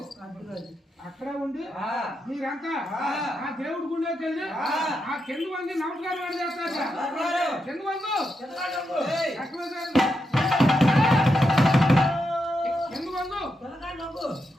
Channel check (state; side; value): normal; both; correlation 0.84